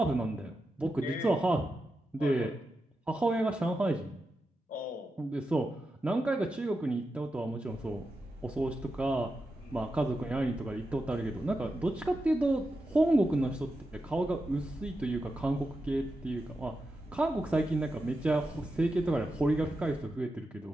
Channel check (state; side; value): normal; both; correlation 0.89